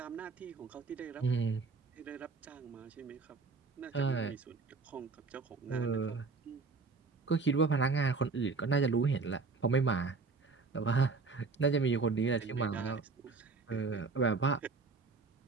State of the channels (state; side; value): quieter; left; 4.4 dB